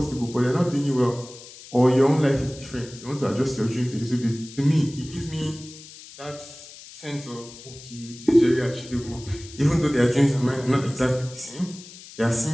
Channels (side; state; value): left; noise; hiss, 17 dB below the sound